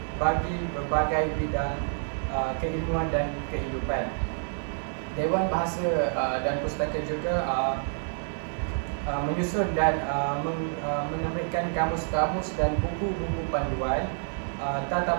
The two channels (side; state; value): left; silent; digital silence